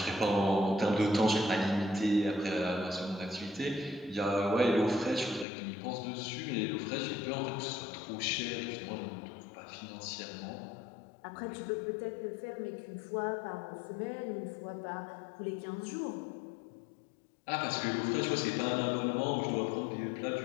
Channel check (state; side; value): drops out; right; at 5.5 s